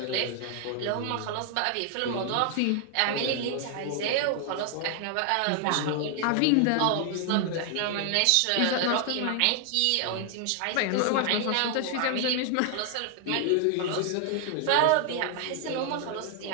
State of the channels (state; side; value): different; both; correlation 0.00